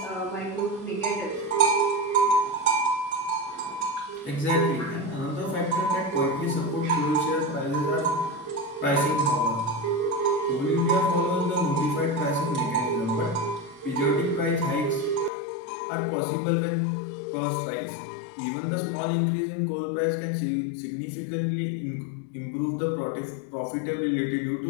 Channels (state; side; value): drops out; right; at 15.3 s